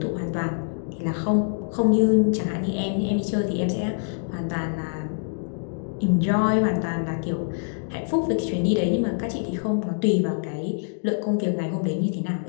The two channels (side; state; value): right; silent; 62 dB below the other